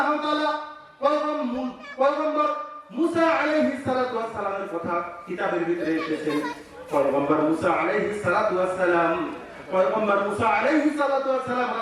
তাআলা পয়গম্বর মুসা আলাইহিস সালাতু ওয়াস সালামের কথা কিতাবের ভিতরে এসেছেন। পয়গম্বর মুসা আলাইহিস সালাতু ওয়াস সালাম, পয়গম্বর মুসা আলাইহিস সালাতু ওয়াস সালাম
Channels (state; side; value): identical; both; correlation 1.00